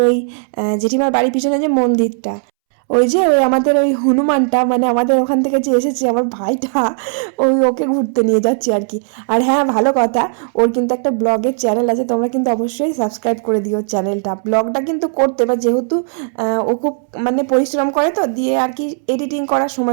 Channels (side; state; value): left; silent; 69 dB below the other